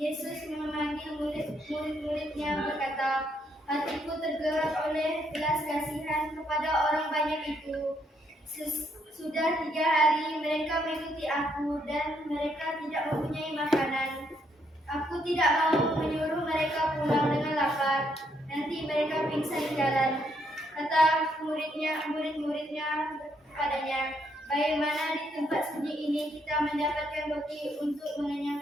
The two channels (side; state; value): both; normal; correlation 0.74